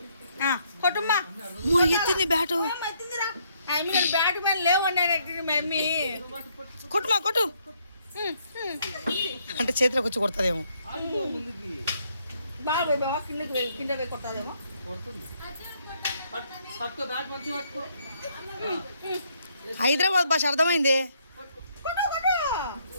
కొట్టుమ్మా, ఎత్తింది బ్యాటు. నేను బ్యాట్ మీద లేవు అన్నాడు మమ్మీ. కొట్టుమా కొట్టు అంటే చేతిలోకి వచ్చి కొడుతుందేమో. బాగా కింద పోయి కొడతాదేమో. హైదరాబాద్ భాష అర్థమైంది.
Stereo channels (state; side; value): inverted; both; correlation -0.70